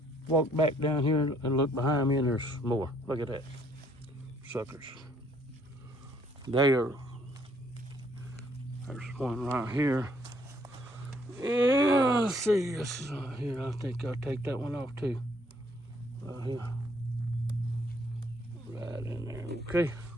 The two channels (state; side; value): normal; both; correlation 0.66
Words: walked back down here and looked behind me and there's more. Look at that, suckers. There's one right here. Yeah, let's see, this is right here. I think I'll take that one off too. Right here. Right in there, okay.